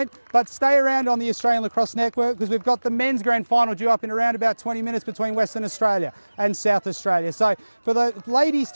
But stay around on the Australian Lacrosse Network because we've got the men's grand final due up in around about 20 minutes between Western Australia and South Australia. So for the ladies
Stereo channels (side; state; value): both; inverted; correlation -1.00